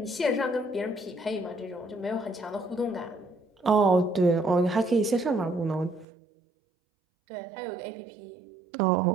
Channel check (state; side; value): drops out; left; at 6.1 s